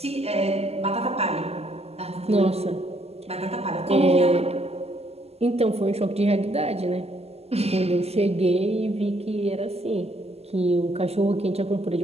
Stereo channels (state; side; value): late; left; 0.30 ms